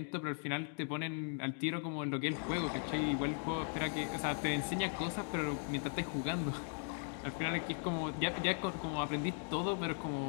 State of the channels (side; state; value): right; silent; 52 dB below the other